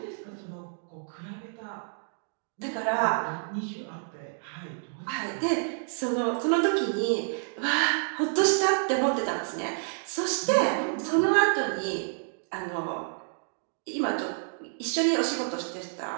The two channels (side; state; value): left; silent; digital silence